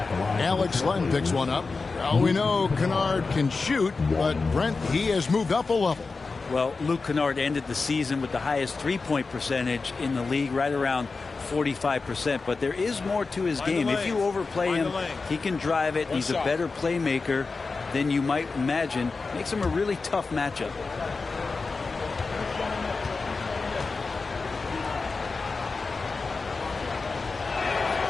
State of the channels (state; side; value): quieter; right; 4.2 dB